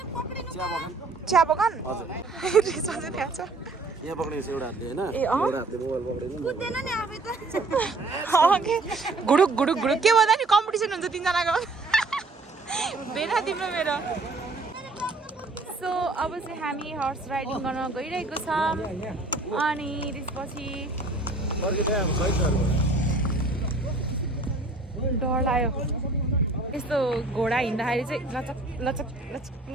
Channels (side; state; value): left; quieter; 3.2 dB